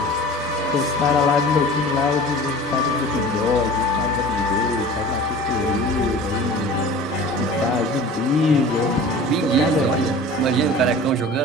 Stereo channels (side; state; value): both; normal; correlation 0.40